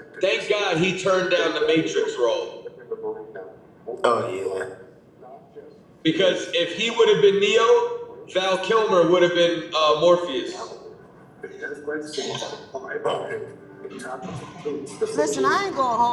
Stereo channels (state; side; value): identical; both; correlation 1.00